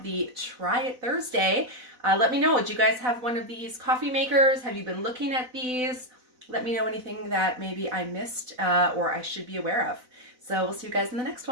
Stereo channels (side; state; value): left; late; 4.0 ms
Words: the Try It Thursday. Let me know, did you guys have one of these coffee makers? Have you been looking at these? Let me know anything that maybe I missed or I should be aware of. So we'll see you guys in the next